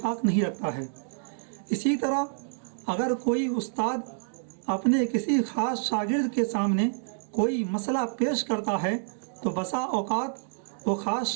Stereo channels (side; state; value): left; silent; digital silence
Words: نہیں رکھتا ہے۔ اسی طرح اگر کوئی استاد اپنے کسی خاص شاگرد کے سامنے کوئی مسئلہ پیش کرتا ہے تو بسا اوقات وہ خاص